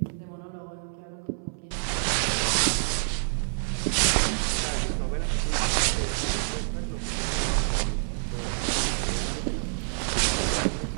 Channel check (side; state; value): left; silent; 60 dB below the other